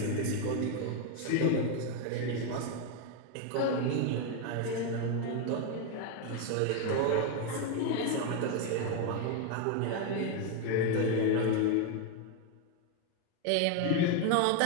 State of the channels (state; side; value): different; both; correlation 0.01